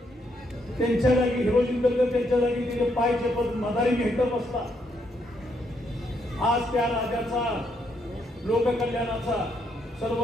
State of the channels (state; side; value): normal; both; correlation 0.75